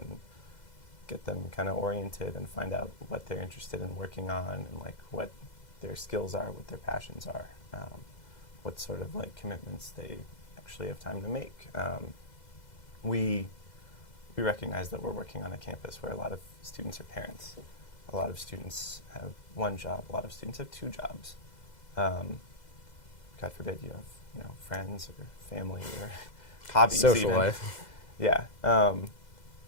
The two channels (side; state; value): right; late; 2.0 ms